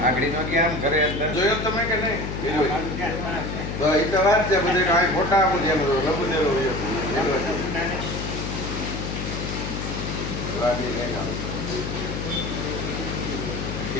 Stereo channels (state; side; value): noise; left; hum, 5 dB below the sound